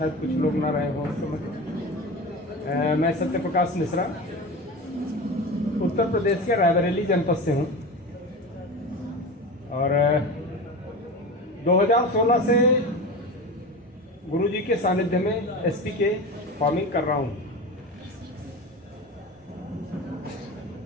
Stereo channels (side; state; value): both; normal; correlation 0.28